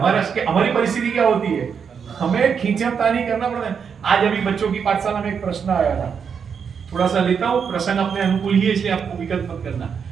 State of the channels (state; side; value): quieter; left; 6.7 dB